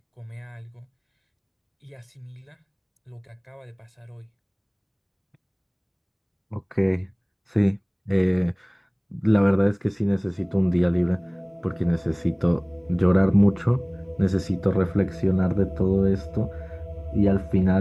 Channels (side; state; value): both; identical; correlation 1.00